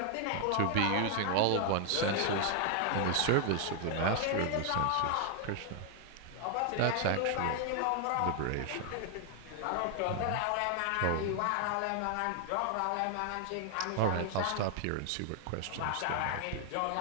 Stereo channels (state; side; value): different; both; correlation 0.00